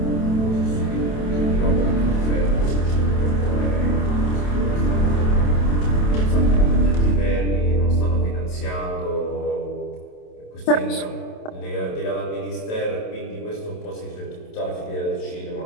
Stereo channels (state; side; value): late; right; 27 ms